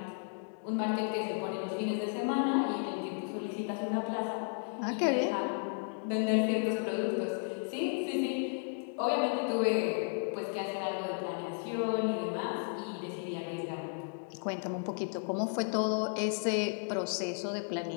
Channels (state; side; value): silent; right; 55 dB below the other